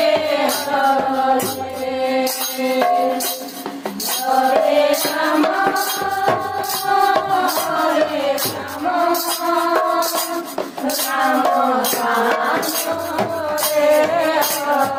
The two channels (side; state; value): both; identical; correlation 1.00